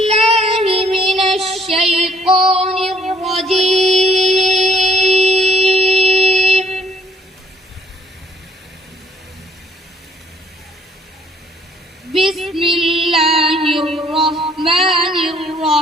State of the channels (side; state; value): both; normal; correlation 0.63